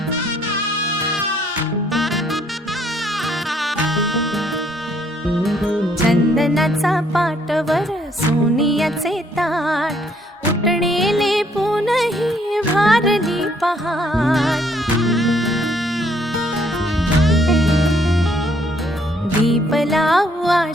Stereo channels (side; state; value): both; normal; correlation 0.67